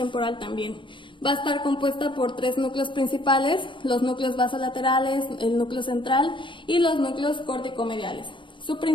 también. Va a estar compuesta por 3 núcleos principales, los núcleos basolaterales, el núcleo central y los núcleos córtico-mediales. Su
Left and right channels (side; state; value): right; late; 0.24 ms